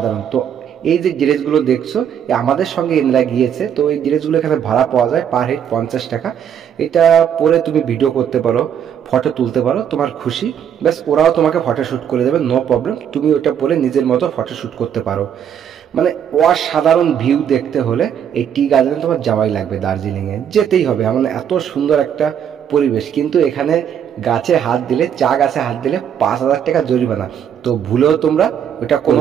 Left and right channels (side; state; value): left; quieter; 8.8 dB